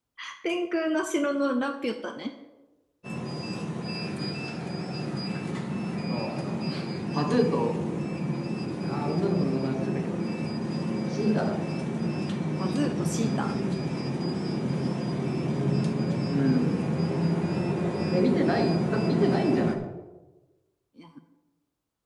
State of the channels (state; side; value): identical; both; correlation 1.00